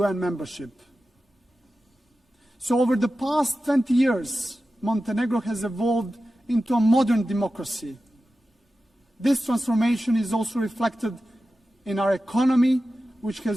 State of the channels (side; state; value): both; normal; correlation 0.93